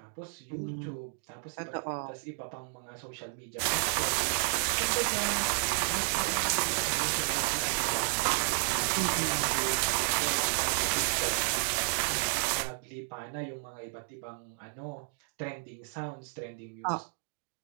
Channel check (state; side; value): silent; left; 56 dB below the other